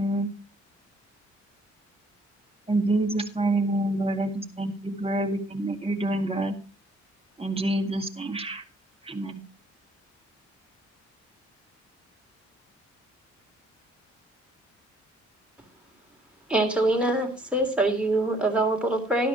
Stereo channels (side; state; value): both; normal; correlation 0.64